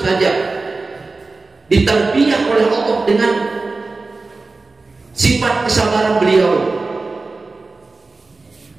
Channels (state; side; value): quieter; left; 3.7 dB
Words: saja ditarbiyah oleh Allah dengan sifat kesabaran beliau.